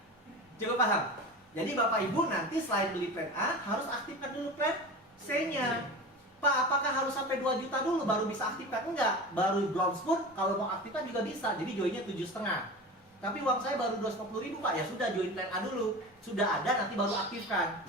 Cukup paham? Jadi Bapak Ibu nanti selain beli plan A, harus aktifkan dulu plan C-nya. Pak, apakah harus sampai 2 juta dulu baru bisa aktifkan? Enggak. Baru bronze pun kalau mau aktifkan juga bisa. Jadi joinnya 7,5. Tapi uang saya baru 250.000 Pak, ya sudah join plan A dulu. Sudah ada nanti baru aktifkan.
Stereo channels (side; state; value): both; normal; correlation 0.31